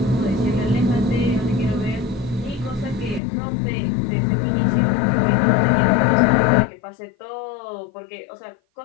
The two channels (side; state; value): right; drops out; at 3.2 s